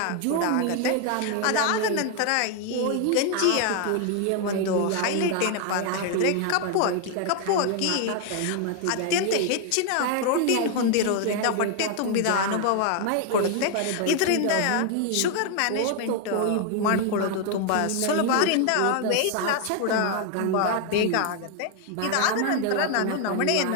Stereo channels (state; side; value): different; both; correlation 0.00